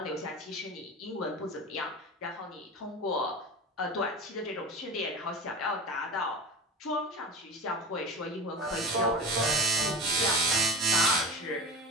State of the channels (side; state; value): both; normal; correlation 0.31